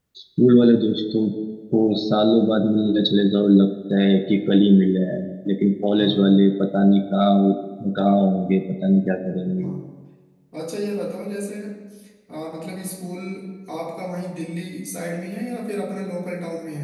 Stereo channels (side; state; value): both; identical; correlation 1.00